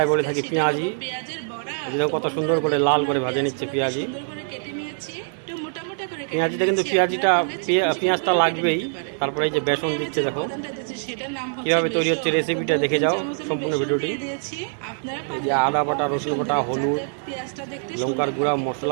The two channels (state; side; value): silent; left; digital silence